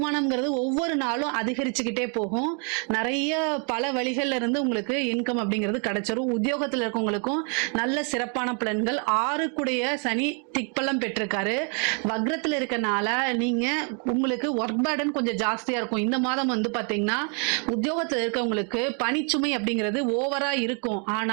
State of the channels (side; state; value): left; quieter; 39.3 dB